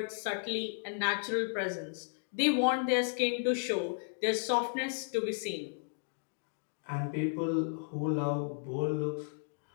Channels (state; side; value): silent; right; digital silence